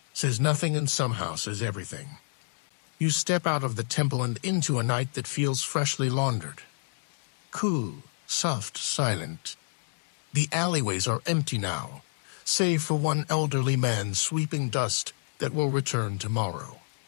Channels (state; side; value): silent; right; 59 dB below the other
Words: says nothing and somehow says everything. You step out of the temple and into a night that feels freshly laundered. Cool, soft, silent. The alleyways are empty now, save for one elderly man sweeping dust that will return tomorrow.